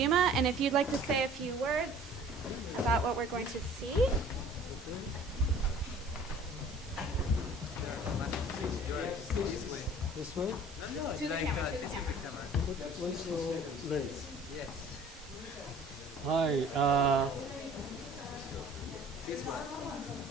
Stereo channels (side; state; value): both; normal; correlation 0.49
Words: And if you'd like to say a few words about what we're going to see. This way? To the camera, to the camera. What's your lens? Hi.